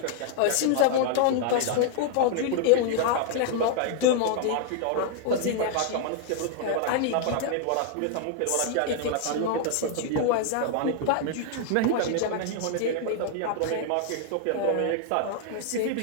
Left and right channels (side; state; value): both; different; correlation 0.00